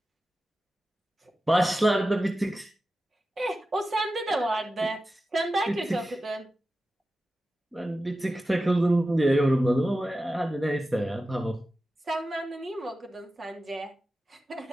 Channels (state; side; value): normal; both; correlation 0.94